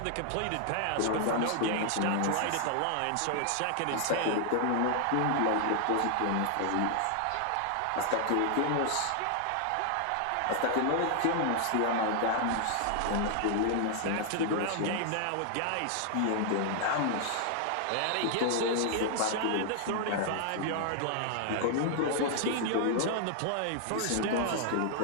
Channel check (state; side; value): different; both; correlation 0.00